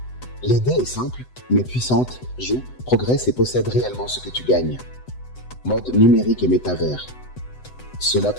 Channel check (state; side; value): late; right; 8.0 ms